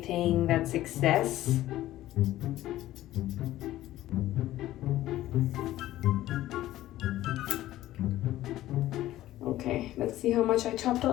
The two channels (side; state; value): right; quieter; 14.7 dB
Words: that's excess. Okay, let's see how much I chopped